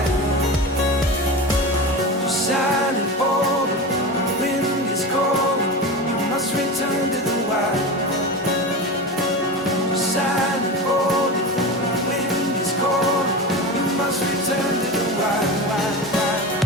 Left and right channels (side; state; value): both; normal; correlation 0.25